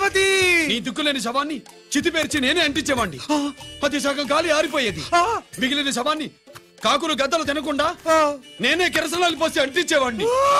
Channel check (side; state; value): both; identical; correlation 1.00